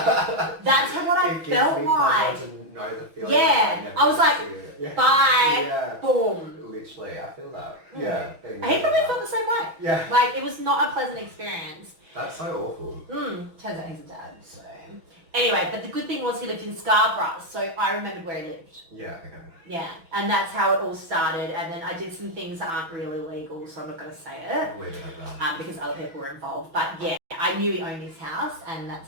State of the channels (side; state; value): left; late; 6.1 ms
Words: That's what I It gives felt me like. pleasure to know the feeling. Yeah, that I was never like, see it. Yeah. Bye. Yeah. Boom. Literally, I feel that. Mm. Yeah. He probably felt the same way. Yeah. Like, it was not a pleasant experience. That's so awful. Turns out he's a dad, so. Anyway, but the good thing was he lived in Scarborough, so I remembered where he lived. Yeah, okay. Yeah, and that's how it all started. And then I did some things that aren't really legal, so I'm not going to say it I'll leave it at that. because other people were involved. But yeah, I knew he owned his house, and that's